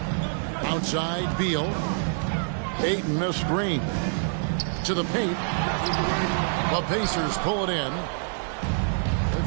Outside Beal. Ayton a screen. To the paint. The Pacers pull it in. They've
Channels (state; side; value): silent; left; 61 dB below the other